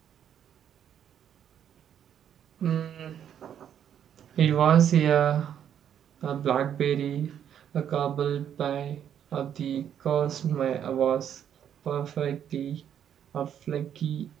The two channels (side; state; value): left; quieter; 9.3 dB